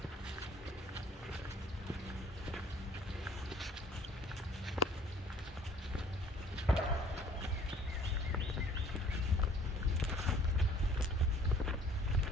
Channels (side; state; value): both; normal; correlation 0.55